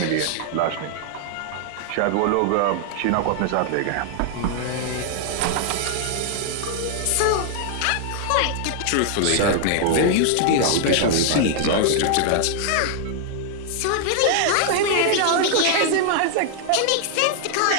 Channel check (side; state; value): both; different; correlation 0.00